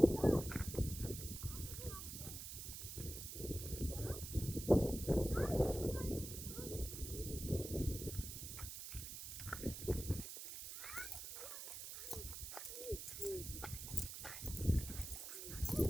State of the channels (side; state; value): right; noise; hiss, 8 dB below the sound